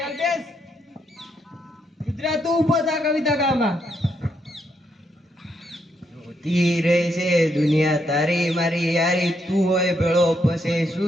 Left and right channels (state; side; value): normal; both; correlation 0.77